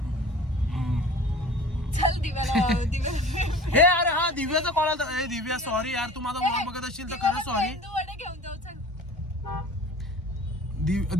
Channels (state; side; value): normal; both; correlation 0.43